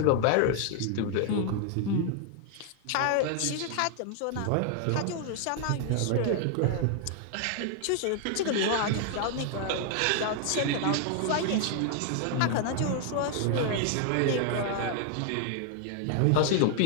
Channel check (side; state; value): both; different; correlation 0.00